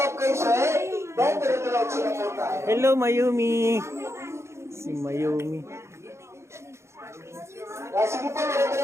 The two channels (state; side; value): late; left; 0.13 ms